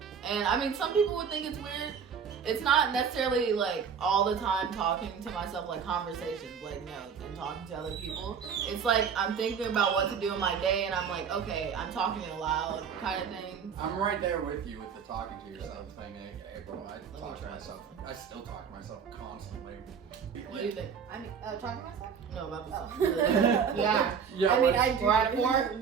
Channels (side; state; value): left; quieter; 6.8 dB